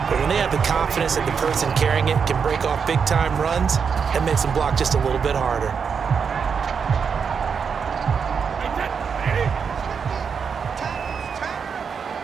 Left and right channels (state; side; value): quieter; left; 6.3 dB